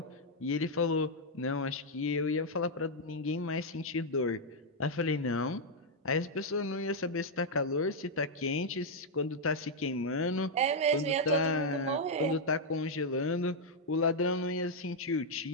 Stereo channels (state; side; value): normal; both; correlation -0.03